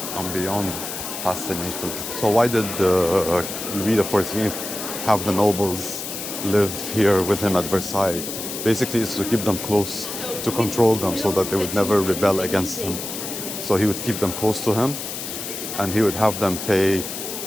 I'm beyond fascinated. So why did Louis XIV have the nobles live here with him at Versailles? Basically, it's to keep them close, to control them so that they would never rebel against him. So he would keep them close to him, and he would have them pay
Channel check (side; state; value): left; noise; hiss, 7 dB below the sound